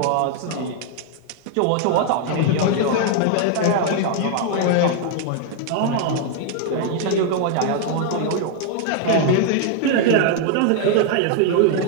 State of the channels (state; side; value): different; both; correlation 0.00